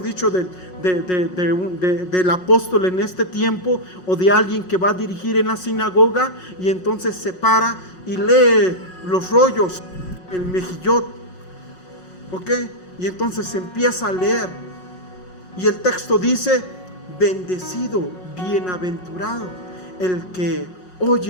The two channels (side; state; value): right; late; 5.5 ms